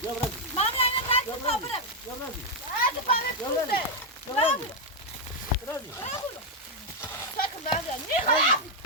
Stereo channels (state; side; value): normal; both; correlation 0.00